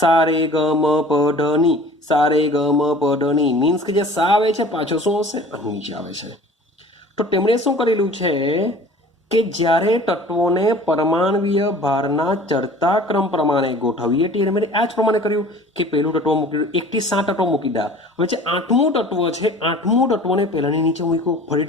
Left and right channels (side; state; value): both; normal; correlation 0.45